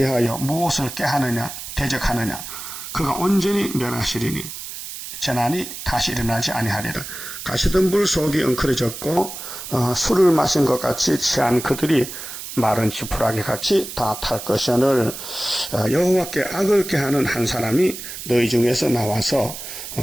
무엇을 꾀하느냐 대적하느냐 그가 온전히 멸하시리니 재난이 다시 일어나지 아니하리라. 가시덤불 속이 엉클어졌고 술을 마신 것 같이 취한 그들이 마른 지푸라기 같이 다 탈 것이오늘 여호와께 악을 꾀하는 한 사람이 너희 중에서 나와서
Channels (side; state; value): right; noise; hiss, 10 dB below the sound